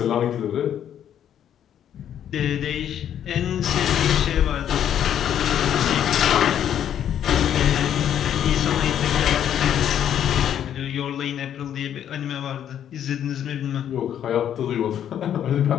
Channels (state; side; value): quieter; right; 9.9 dB